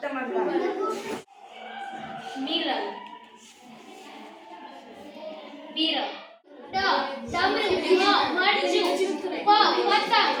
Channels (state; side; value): identical; both; correlation 1.00